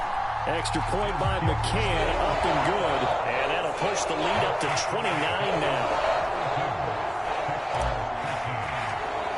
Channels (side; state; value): both; identical; correlation 1.00